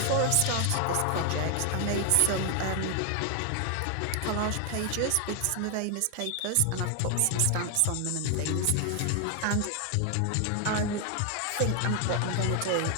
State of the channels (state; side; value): different; both; correlation 0.00